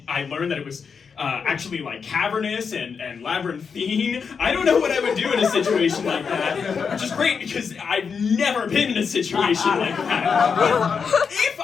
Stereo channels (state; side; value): quieter; right; 6.0 dB